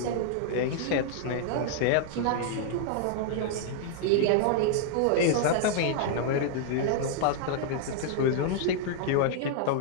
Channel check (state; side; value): different; both; correlation -0.01